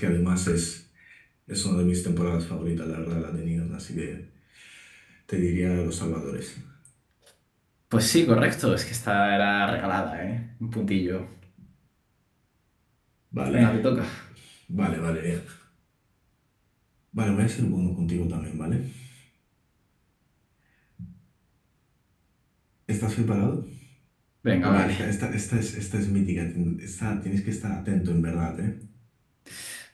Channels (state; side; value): identical; both; correlation 1.00